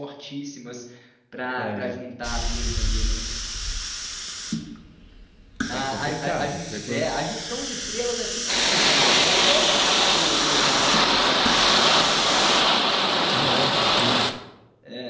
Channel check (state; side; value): identical; both; correlation 1.00